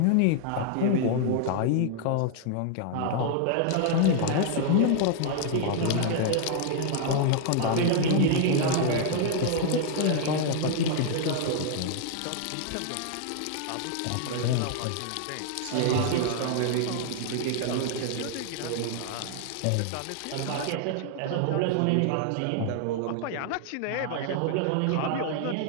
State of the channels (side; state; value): both; different; correlation -0.01